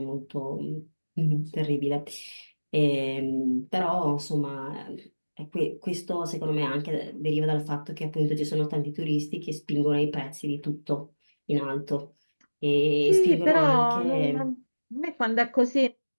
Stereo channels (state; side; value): inverted; both; correlation -1.00